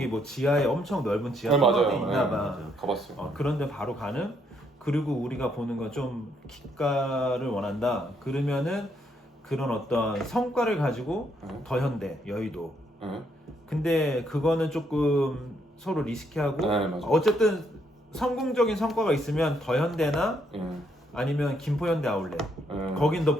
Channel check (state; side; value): normal; both; correlation 0.73